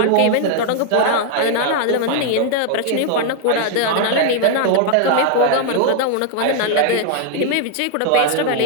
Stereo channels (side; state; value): both; different; correlation 0.00